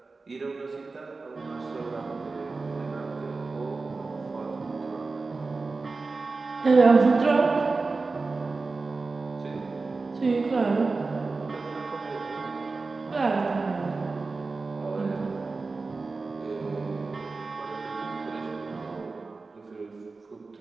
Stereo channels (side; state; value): left; quieter; 3.9 dB